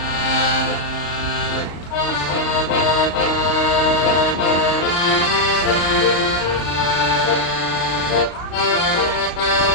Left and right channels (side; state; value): right; late; 35 ms